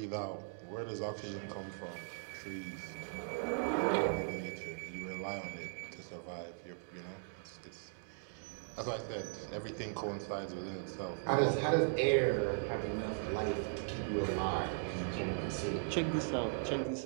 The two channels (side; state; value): left; silent; digital silence